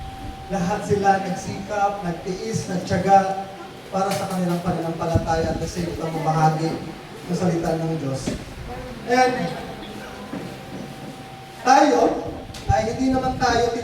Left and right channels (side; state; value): both; identical; correlation 1.00